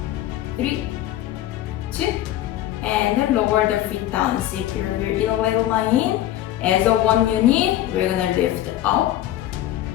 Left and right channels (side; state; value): right; quieter; 13.3 dB